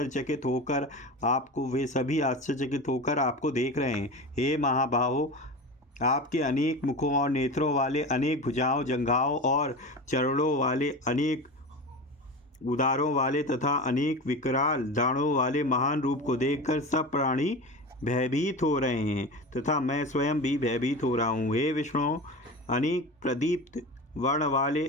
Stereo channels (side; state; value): both; normal; correlation 0.29